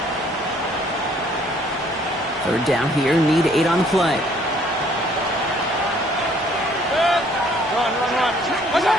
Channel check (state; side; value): normal; both; correlation 0.61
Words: Third down here, need 8 on the play.